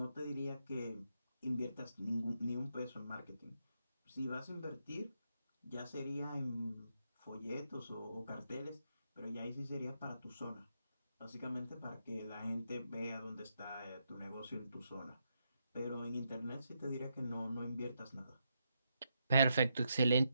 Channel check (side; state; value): both; inverted; correlation -0.82